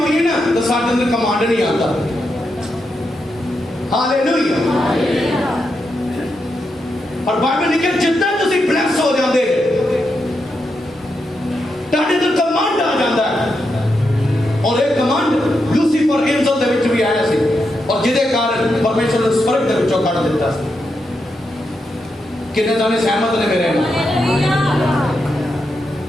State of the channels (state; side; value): normal; both; correlation 0.84